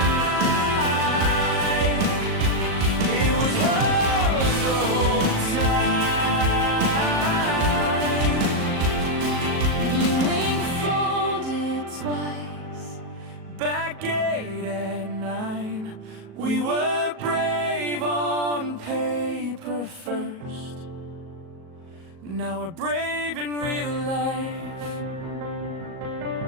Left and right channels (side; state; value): left; late; 37 ms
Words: it was hers the whole time. Blue ink folded twice, Back gate at 9. We were brave on paper first, now we're brave in real life.